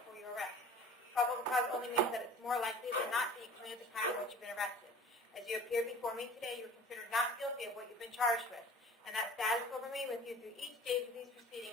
for your arrest. Probable cause only means that it's more likely than not that you committed the crime for which you've been arrested. As you appear before me today, you are considered not guilty of what you've been charged with, and that status will remain with you through each stage of these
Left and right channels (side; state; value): both; normal; correlation 0.44